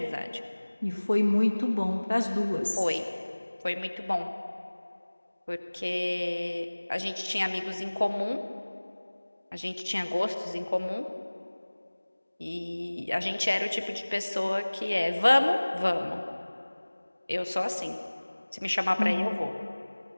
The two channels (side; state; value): both; inverted; correlation -1.00